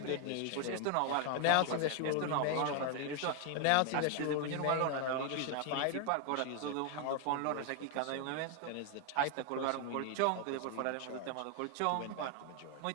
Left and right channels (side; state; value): both; different; correlation 0.01